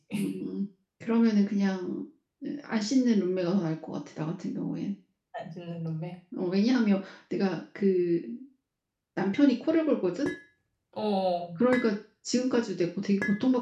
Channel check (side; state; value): both; identical; correlation 1.00